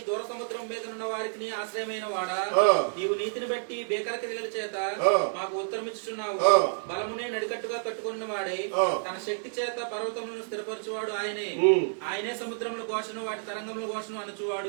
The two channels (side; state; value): left; silent; digital silence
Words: దూర సముద్రం మీద ఉన్న వారికి ఆశ్రయమైన వాడా, నీవు నీతిని బట్టి బేకర క్రియల చేత మాకు ఉత్తరమిచ్చుచున్నావు. బలమునే నడికట్టుగా కట్టుకున్న వాడే, తన శక్తి చేత పర్వతములను స్థిరపరచువాడు ఆయనే సముద్రముల ఘోషను వాటి తరంగముల ఘోషను